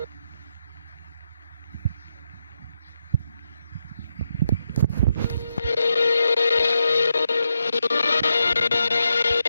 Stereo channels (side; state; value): both; inverted; correlation -0.84